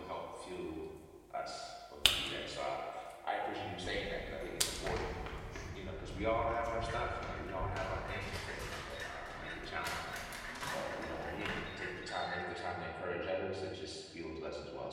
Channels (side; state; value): both; identical; correlation 1.00